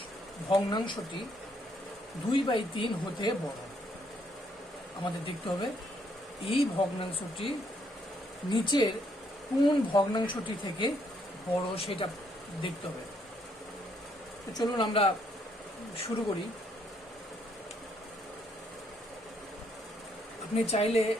ভগ্নাংশটি 2/3 হতে বড়? আমাদের দেখতে হবে এই ভগ্নাংশটি নিচের কোন ভগ্নাংশটি থেকে বড় সেটা দেখতে হবে। তো চলুন আমরা শুরু করি। আপনি চাইলে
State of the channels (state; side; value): normal; both; correlation 0.71